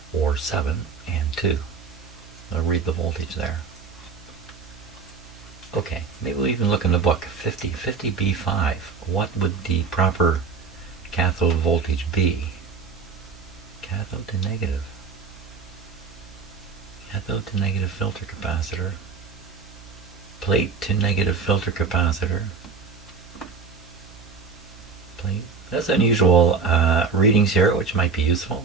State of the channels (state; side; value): quieter; left; 5.1 dB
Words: or 7 and 2. I'll read the voltage there. Okay, maybe we'll even look in the book. 50 B5. What would the proper cathode voltage be? Cathode to negative. Cathode to negative filter capacitor. Plate to negative filter capacitor. Plate. That's unusual readings here, which might be useful.